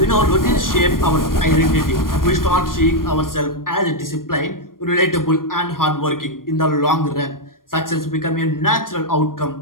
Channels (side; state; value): right; late; 0.91 ms